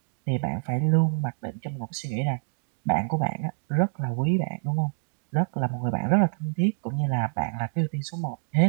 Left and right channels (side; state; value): left; silent; digital silence